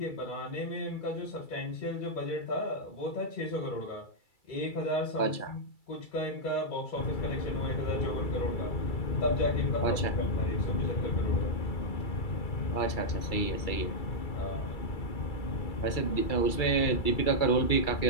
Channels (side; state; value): right; late; 2.3 ms